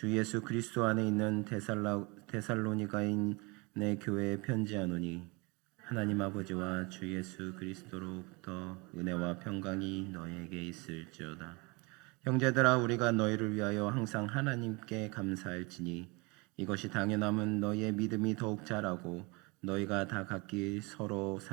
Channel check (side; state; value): left; quieter; 27.5 dB